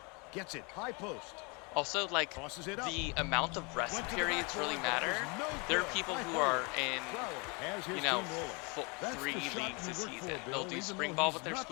gets it high post. Also, like, Tosses it up. the amount of rest Went to the periods backboard, really but it matter. was no There are good. people High who forward. are in, Brower has his you know, team rolling. That's 3 the shot leagues you this work season. for, They'll Bill, do even spring though ball he's with their not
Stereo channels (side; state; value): right; quieter; 30.8 dB